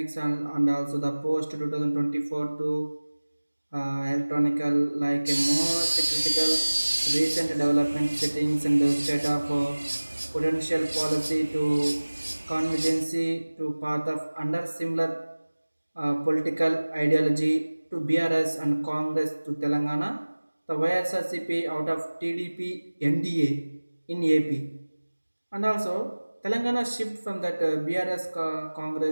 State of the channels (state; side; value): inverted; both; correlation -1.00